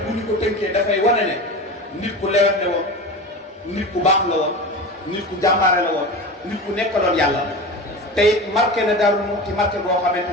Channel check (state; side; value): normal; both; correlation 0.29